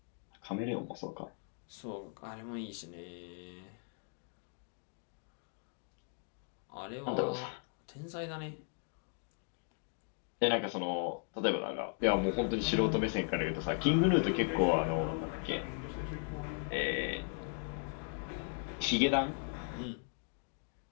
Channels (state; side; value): silent; right; 53 dB below the other